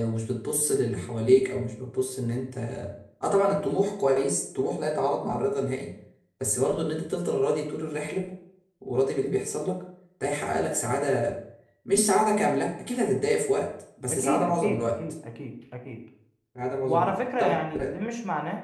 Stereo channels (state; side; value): identical; both; correlation 1.00